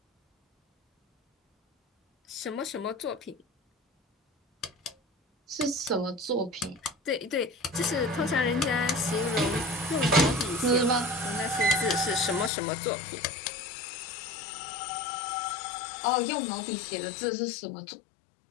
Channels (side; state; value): right; drops out; at 12.5 s